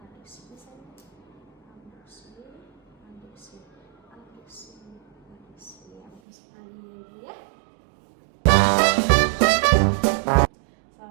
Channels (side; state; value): left; drops out; at 6.2 s